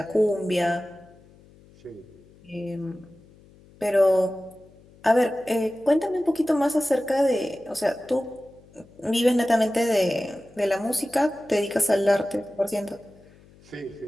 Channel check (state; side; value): noise; left; hum, 26 dB below the sound